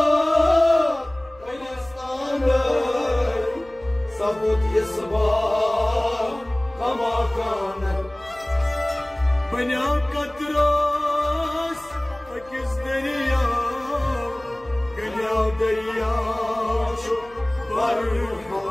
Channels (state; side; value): noise; left; hum, 25 dB below the sound